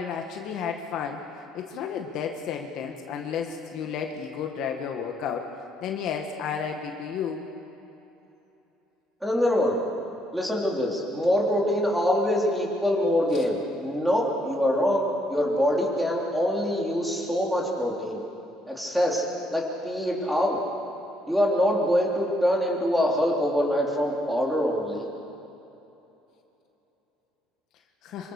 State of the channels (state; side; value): normal; both; correlation 0.72